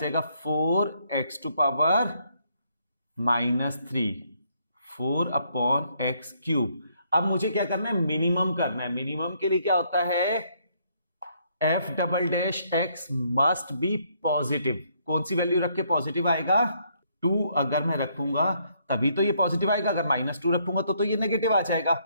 4x to power -3, 4 upon x cube. अब मुझे क्या करना है, मिनिमम करना है। मिनिमम के लिए क्या होता है, F double dash x must B positive. कौन सी वैल्यू रख के पॉजिटिव आएगा, 2 अगर मैं रखूंगा तभी तो ये पॉजिटिव आएगा, अगर -2 रखूंगा तो ये नेगेटिव आ जाएगा।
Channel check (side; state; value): both; inverted; correlation -0.70